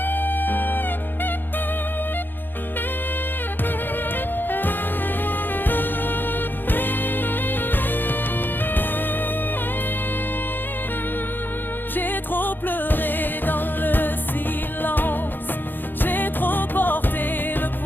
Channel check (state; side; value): late; right; 0.093 ms